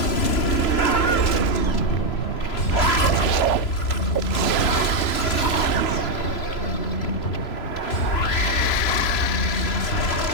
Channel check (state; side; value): late; right; 3.0 ms